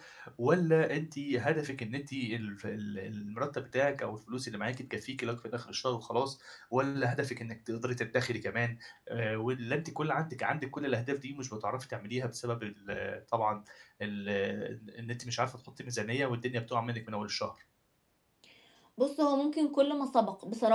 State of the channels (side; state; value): both; identical; correlation 1.00